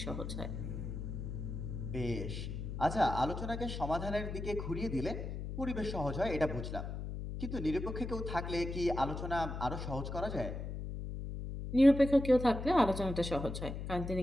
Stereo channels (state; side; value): noise; left; hum, 6 dB below the sound